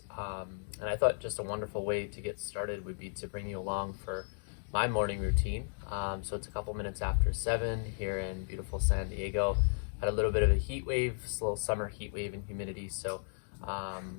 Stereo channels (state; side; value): silent; right; digital silence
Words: And I thought just a wonderful way to get started would be to bring you along for my morning routine. So it's a couple minutes after 7 here in beautiful San Diego. Had a little bit of a heat wave, a little summer heat wave and humidity. So